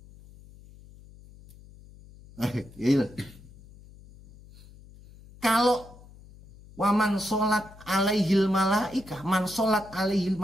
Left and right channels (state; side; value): noise; left; hum, 22 dB below the sound